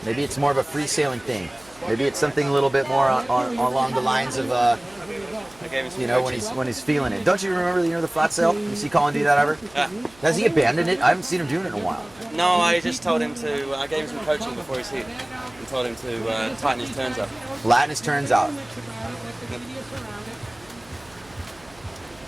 Maybe it's more of a free sailing thing. Maybe it's something a little bit more along the lines of, when he's feeling it. Don't you remember the flat sail? You see Colin do that ever? Yeah. Has he abandoned it? I haven't seen him doing it in a while. No, I just told him to, I gave him some coaching before his heat and told him to tighten his turns up. Flatten his turns out.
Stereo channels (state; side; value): noise; right; hum, 26 dB below the sound